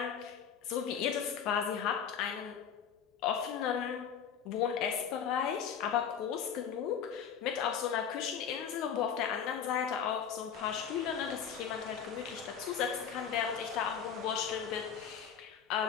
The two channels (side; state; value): right; quieter; 7.7 dB